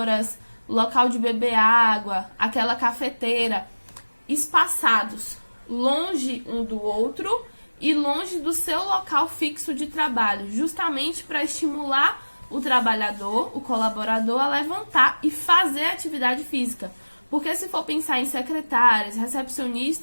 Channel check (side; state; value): both; inverted; correlation -1.00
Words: local de beber água, aquela cafeteira, espaçados, longe um do outro e longe do seu local fixo de trabalho, justamente para estimular o trabalhador, o colaborador, a levantar e fazer atividade física. Porque se for pensar em secretárias,